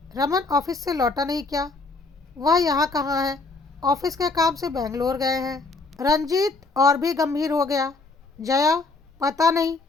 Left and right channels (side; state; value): right; quieter; 3.6 dB